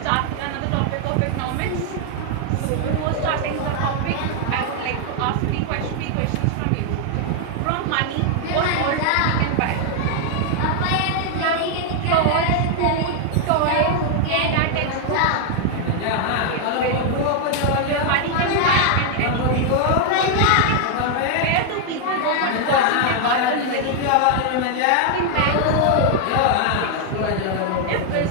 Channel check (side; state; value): both; different; correlation 0.00